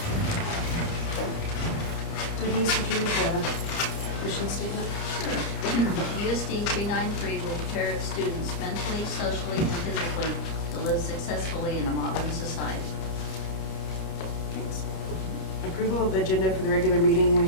Denise, would you read the mission statement? USD 393 will prepare its students mentally, socially, and physically to live successfully in a modern society. Thanks. Approval of the agenda for the regular meeting. We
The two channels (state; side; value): late; right; 30 ms